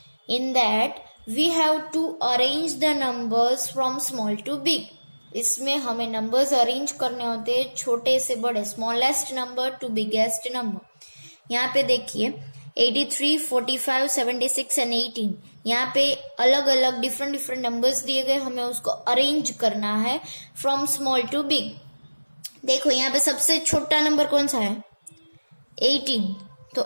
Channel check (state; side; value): inverted; both; correlation -1.00